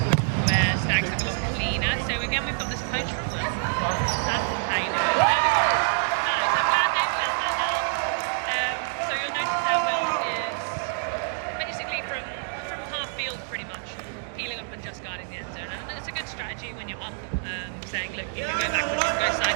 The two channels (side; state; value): left; silent; digital silence